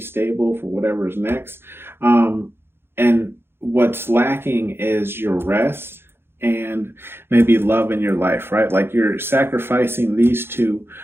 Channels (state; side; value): late; left; 0.11 ms